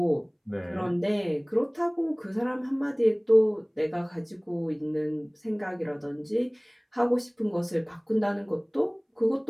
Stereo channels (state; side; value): identical; both; correlation 1.00